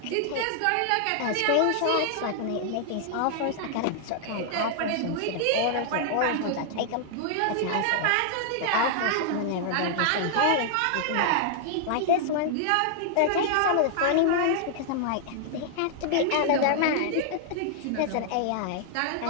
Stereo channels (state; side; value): different; both; correlation 0.00